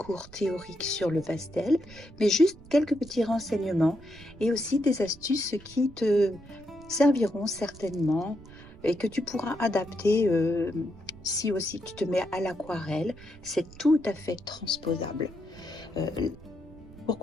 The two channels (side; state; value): right; noise; rumble, 20 dB below the sound